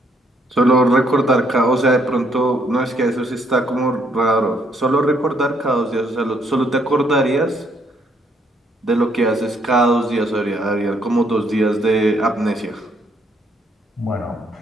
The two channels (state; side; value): normal; both; correlation 0.70